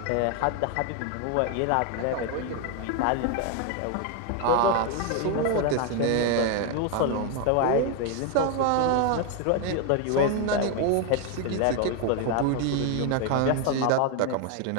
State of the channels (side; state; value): both; different; correlation 0.01